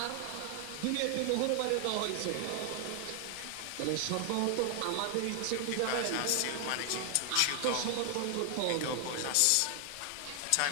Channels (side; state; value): both; different; correlation 0.00